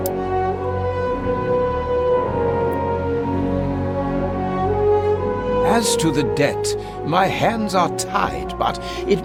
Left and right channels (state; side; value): identical; both; correlation 1.00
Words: As to the debt, my hands are tied, but it